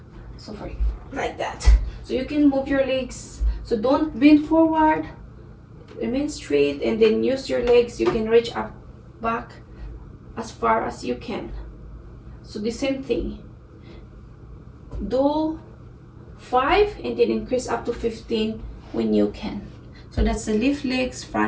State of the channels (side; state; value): both; identical; correlation 1.00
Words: so for like that. So you can move your legs, so don't bend forward, remain straight, and then use your legs. You can reach up back as far as you can. So the same thing, do 5 and then increase up to 15 when you can. So that's the lift legs,